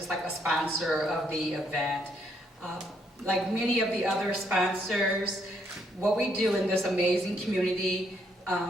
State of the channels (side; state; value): both; normal; correlation 0.72